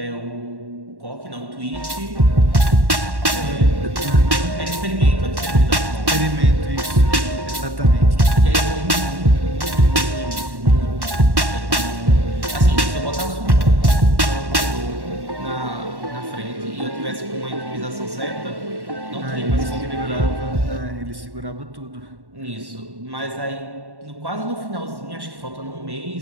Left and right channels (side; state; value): left; late; 1.1 ms